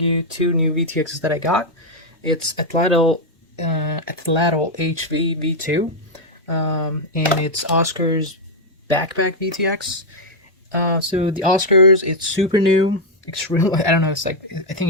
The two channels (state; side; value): normal; both; correlation -0.01